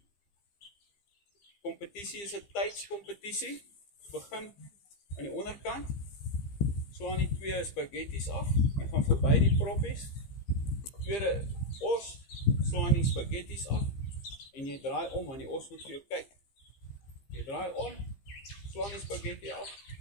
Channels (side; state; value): right; late; 15 ms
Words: Kompetisie is 'n tydskompetisie. Begin aan die onderkant. Slaan die 2 spaghettis af en gaan verby die proppies. Tweede os, slaan die spaghettis af en jy draai om want die os moet vir jou kyk. Jy draai om, slaan die spaghetti af,